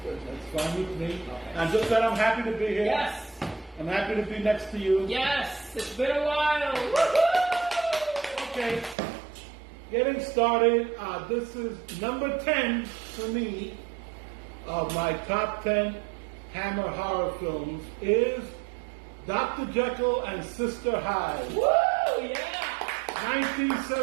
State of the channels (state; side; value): drops out; left; at 9.0 s